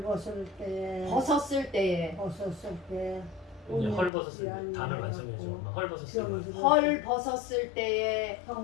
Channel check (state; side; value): drops out; right; at 4.1 s